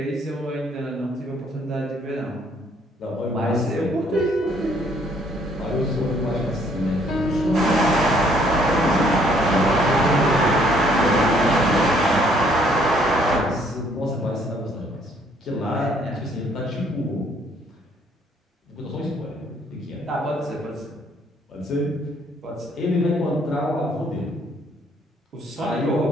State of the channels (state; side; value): normal; both; correlation 0.64